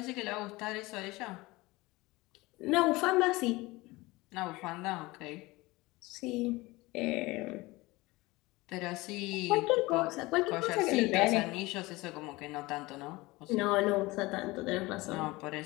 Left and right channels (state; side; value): quieter; right; 21.4 dB